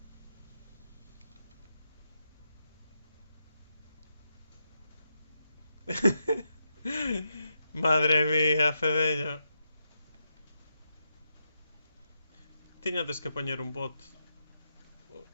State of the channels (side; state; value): both; inverted; correlation -0.85